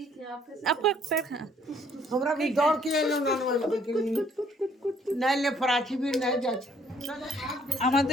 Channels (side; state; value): both; normal; correlation 0.63